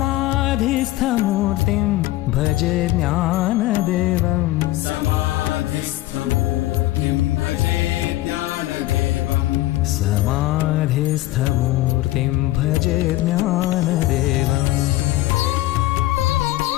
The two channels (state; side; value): quieter; right; 16.9 dB